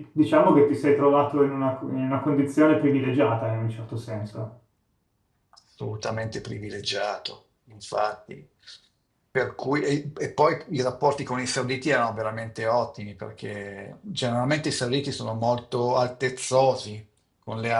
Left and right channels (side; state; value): both; identical; correlation 1.00